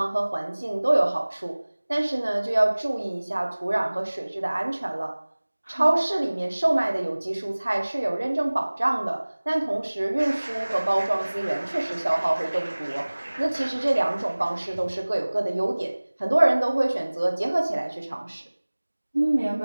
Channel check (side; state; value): both; inverted; correlation -1.00